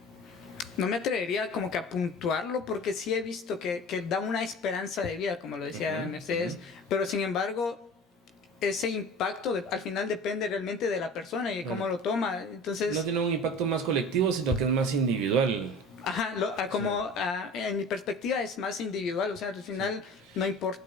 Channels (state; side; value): normal; both; correlation 0.39